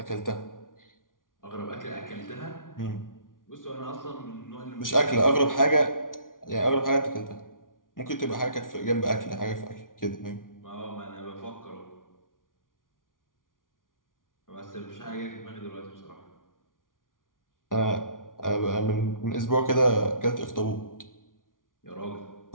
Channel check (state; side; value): late; right; 0.89 ms